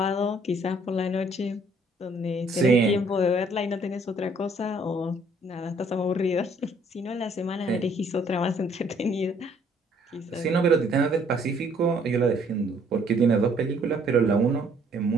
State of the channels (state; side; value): normal; both; correlation 0.63